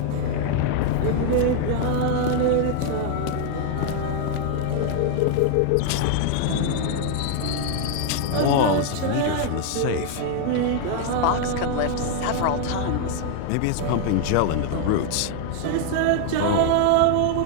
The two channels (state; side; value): different; both; correlation 0.00